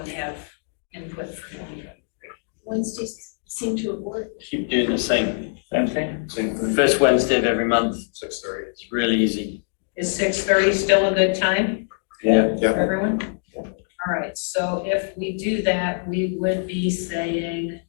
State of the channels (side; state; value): right; silent; digital silence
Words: have input for 2023? Wednesdays seem to have worked. Keep doing the same. Same thing. First Wednesday of every month. 6:30. It's really easy. Is 6:30 still a good time Yeah. for everyone? All right, so if we do that, we would be saying